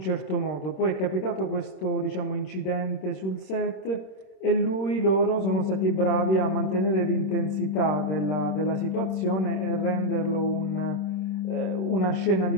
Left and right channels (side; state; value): right; late; 26 ms